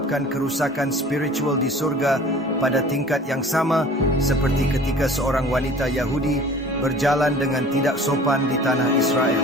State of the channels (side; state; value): both; normal; correlation 0.45